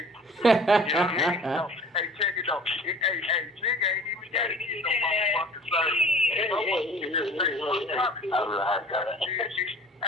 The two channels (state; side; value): normal; both; correlation 0.47